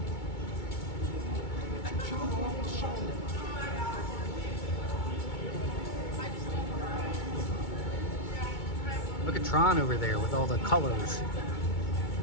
Look at Tron over there with all the colors.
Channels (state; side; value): late; right; 2.2 ms